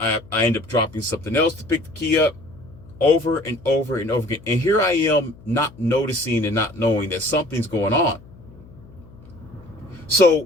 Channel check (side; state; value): left; noise; hum, 22 dB below the sound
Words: end up dropping something else to pick the key up. over and over and over again. And here I am not noticing and not knowing that something's going on.